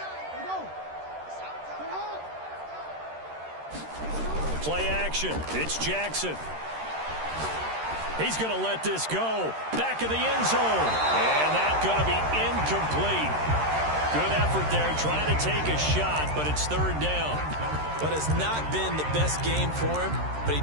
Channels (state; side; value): late; left; 13 ms